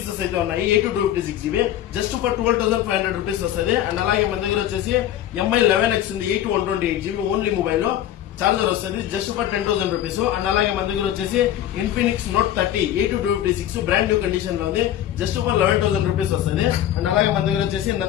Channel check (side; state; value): right; quieter; 11.8 dB